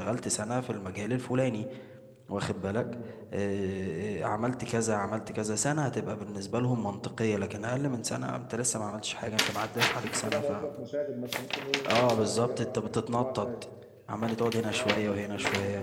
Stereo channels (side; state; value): both; identical; correlation 1.00